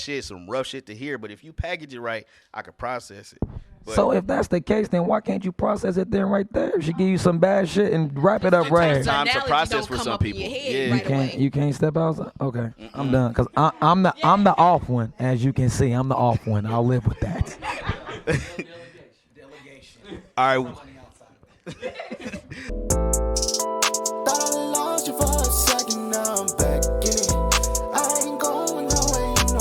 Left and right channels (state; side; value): identical; both; correlation 1.00